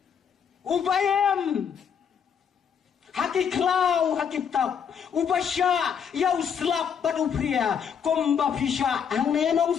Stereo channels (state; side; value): quieter; right; 7.4 dB